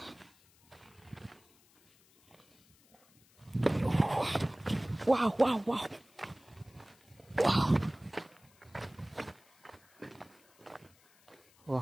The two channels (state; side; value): noise; left; hiss, 30 dB below the sound